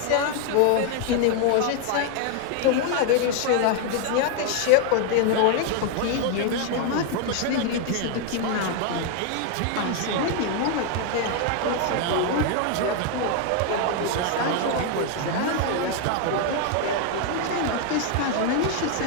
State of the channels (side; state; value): both; different; correlation 0.00